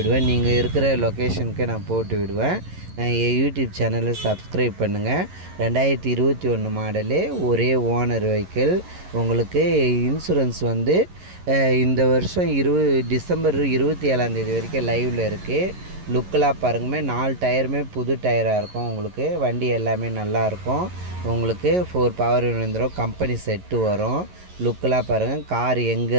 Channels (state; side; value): late; left; 11 ms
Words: நீங்கள் இருக்கிற லொக்கேஷனுக்கு நான் போட்டு விடுவேன். என் யூடியூப் சேனலை சப்ஸ்கிரைப் பண்ணுங்கள். 2021 மாடலு, ஒரே ஓனர் வெஹிக்கிள். உங்களுக்கு இன்சூரன்ஸ் வந்து இந்த வருஷம் டிசம்பர் 27 வரைக்கும் லைவில் இருக்குது. லுக்கெலாம் பாருங்கமே, 4 டயருமே புது டயராக இருக்கும் உங்களுக்கு. வண்டி எல்லாமே நல்லாயிருக்கும் உங்களுக்கு. 4 பவர் விழுந்துடும். கம்பெனி செட்டு வரும். லுக்கெலாம் பாருங்கள். கார் எங்கே